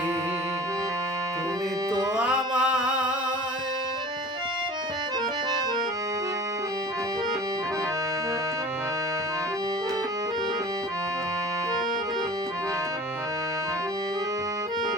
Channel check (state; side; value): normal; both; correlation 0.42